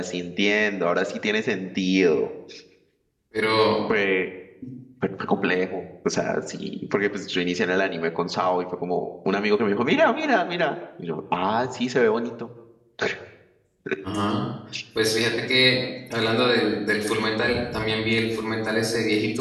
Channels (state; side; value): identical; both; correlation 1.00